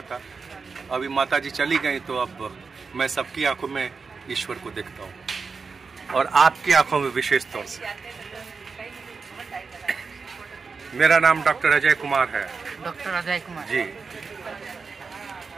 था। अभी माता जी चली गई तो अब मैं सबकी आंखों में ईश्वर को देखता हूँ, और आपकी आंखों में विशेष तौर से। मेरा नाम डॉक्टर अजय कुमार है। डॉक्टर अजय कुमार जी,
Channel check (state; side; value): quieter; left; 4.9 dB